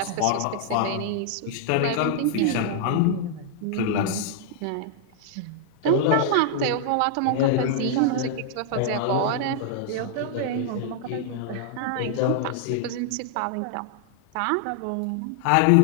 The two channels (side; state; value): both; different; correlation -0.01